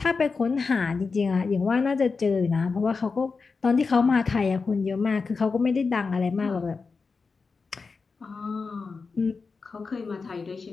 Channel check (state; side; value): quieter; right; 4.6 dB